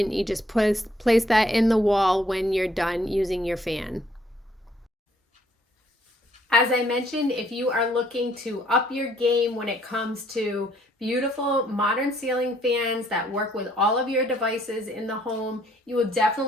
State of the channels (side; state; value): both; normal; correlation 0.66